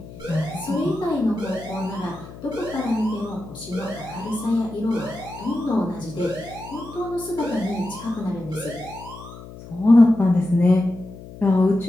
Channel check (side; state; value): left; noise; hum, 15 dB below the sound